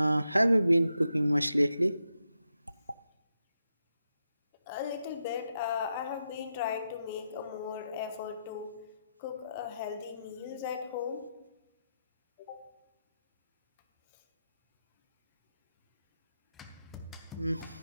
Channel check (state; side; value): inverted; both; correlation -0.86